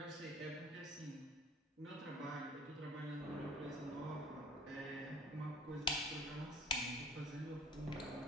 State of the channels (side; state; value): both; normal; correlation 0.46